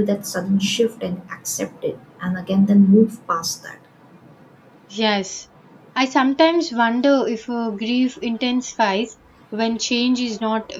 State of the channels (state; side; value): identical; both; correlation 1.00